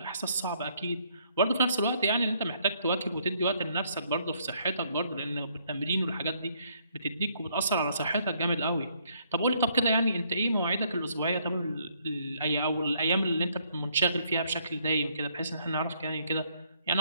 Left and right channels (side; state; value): both; inverted; correlation -0.69